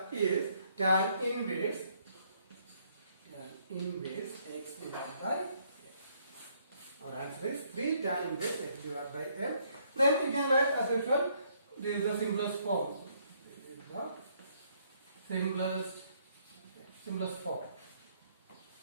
tan inverse x divided by m. Our answer is 3 tan inverse x divided by m. Then you can write as usual. This is the simplest form. the simplest form.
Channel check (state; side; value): inverted; both; correlation -0.69